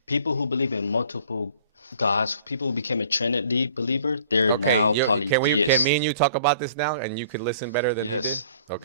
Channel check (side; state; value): both; inverted; correlation -0.53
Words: believe in multiple gods, people who became a Trinity believer, they're now polytheists. can me and you talk about this now, and you could listen better than Yes. he did?